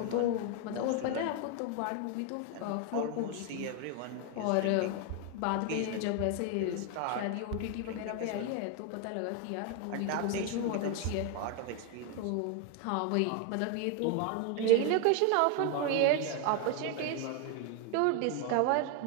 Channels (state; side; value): different; both; correlation 0.01